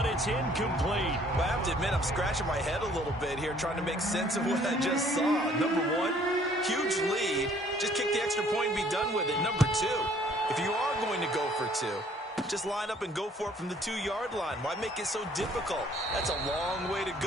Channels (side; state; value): both; normal; correlation 0.59